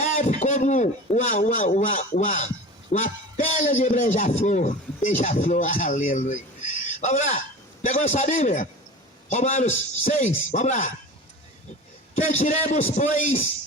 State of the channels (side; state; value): both; normal; correlation 0.34